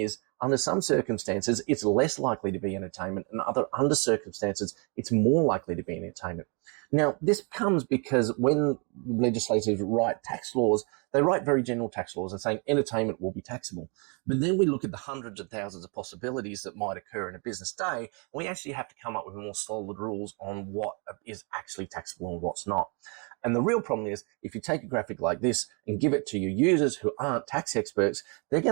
under some circumstances, it's less likely to be entertainment, and under circumstances, it's more likely to be entertainment. Now, this comes because when legislators write tax laws, they write very general tax laws and saying entertainment will be taxable. But then we look at the hundreds of thousands of possibilities that might occur in a business day, and we actually have to come up with more solid rules on what is actually taxable and what's not. And the real problem is, if you take a graphic like this and give it to your users who aren't tax experts, they're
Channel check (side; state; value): left; quieter; 34.8 dB